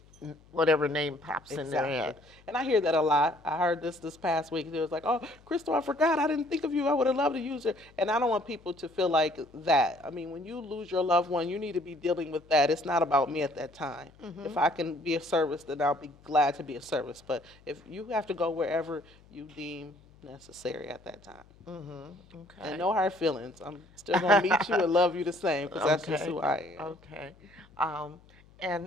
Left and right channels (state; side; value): noise; left; hum, 27 dB below the sound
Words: whatever name pops in their head. And I hear that a lot. I heard this past week. It was like, oh, Crystal, I forgot. I didn't think of you. I would have loved to use it. And I don't want people to feel like that. I mean, when you lose your loved one, you need to be dealing with that. It's not about me at that time. If I can be of service, then I'll be glad to be of service. But if you have to go wherever you deem necessary at that time. Okay. And no hard feelings. I'm still going to meet you and love you the same because that's just who I am. Okay.